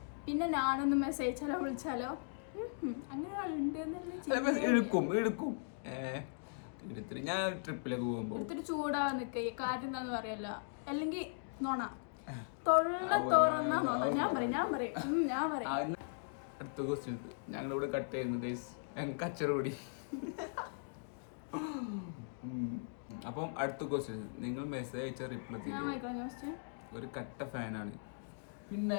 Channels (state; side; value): silent; right; digital silence